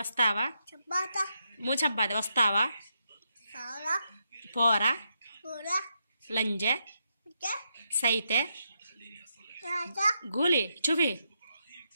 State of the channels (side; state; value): both; inverted; correlation -0.82